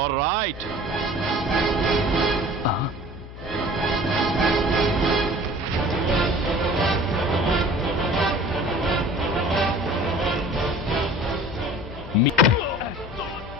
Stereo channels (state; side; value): noise; left; hum, 14 dB below the sound